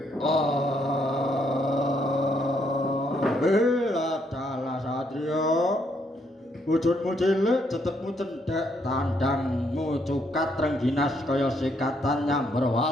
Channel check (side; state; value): both; normal; correlation 0.73